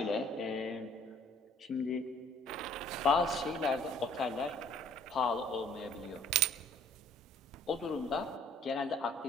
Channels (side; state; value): both; normal; correlation 0.57